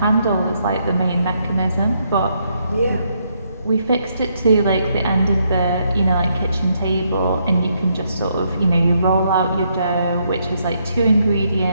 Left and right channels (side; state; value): both; inverted; correlation -0.75